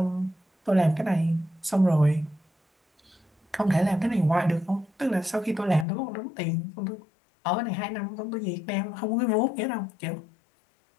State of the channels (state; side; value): drops out; right; at 5.9 s